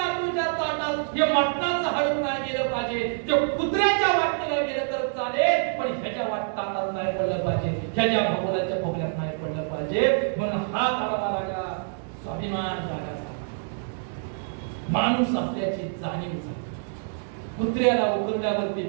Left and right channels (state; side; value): silent; left; digital silence